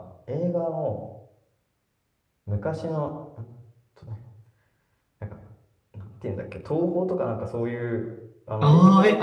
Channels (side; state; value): both; identical; correlation 1.00